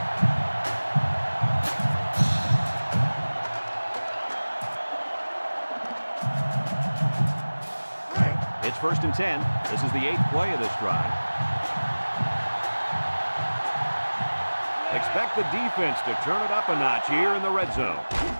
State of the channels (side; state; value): both; inverted; correlation -1.00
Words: It's 1st and 10. This is the 8th play of this drive. Expect the defense to turn it up a notch here in the red zone.